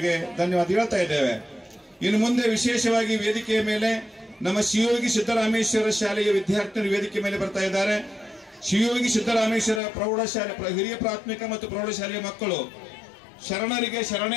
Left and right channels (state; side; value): drops out; right; at 9.8 s